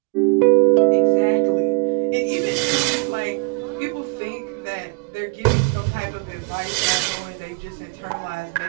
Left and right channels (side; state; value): left; quieter; 32.7 dB